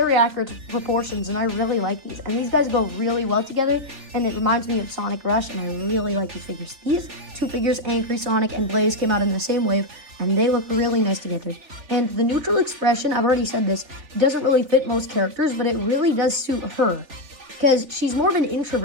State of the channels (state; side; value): late; left; 3.4 ms